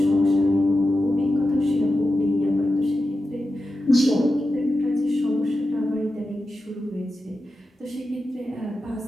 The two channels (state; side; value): normal; both; correlation 0.91